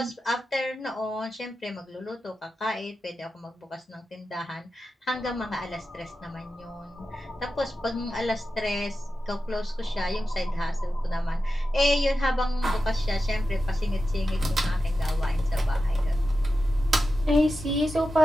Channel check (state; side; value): normal; both; correlation 0.92